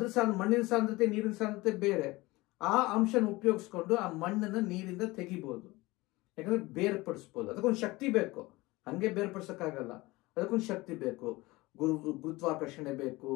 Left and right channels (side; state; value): right; quieter; 21.2 dB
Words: ಮಣ್ಣಿನ ಸಾಂದ್ರತೆ ನೀರಿನ ಸಾಂದ್ರತೆ ಬೇರೆ. ಆ ಅಂಶನ ಉಪಯೋಗಿಸ್ಕೊಂಡು ಆ ಮಣ್ಣನ್ನ ನೀರಿಂದ ತೆಗಿಬಹುದು, ಯಾಕಂದ್ರೆ ಬೇರ್ಪಡಿಸ್ಬೋದು. ಅದಕ್ಕೊಂದು ಶಕ್ತಿ ಬೇಕು, ಹಂಗೆ ಬೇರ್ಪಡಿಸಕ್ಕಾಗಲ್ಲ. ಅದಕ್ಕೊಂದು ಶಕ್ತಿ ಬೇಕು, ಗುರುತ್ವಾಕರ್ಷಣೆ ಬೇಕು,